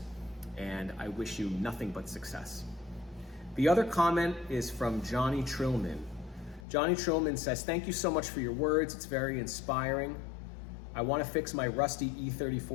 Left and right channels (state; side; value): drops out; right; at 6.7 s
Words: and I wish you nothing but success. The other comment is from Johnny Trillman. Johnny Trillman says, "Thank you so much for your words. It's very inspiring. I want to fix my rusty